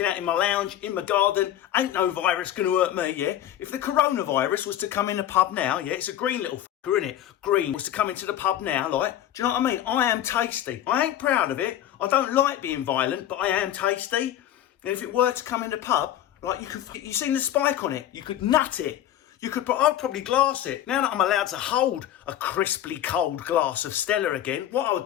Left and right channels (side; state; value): right; quieter; 11.8 dB